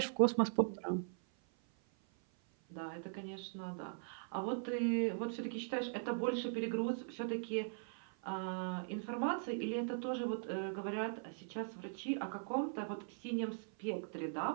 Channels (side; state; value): left; silent; 51 dB below the other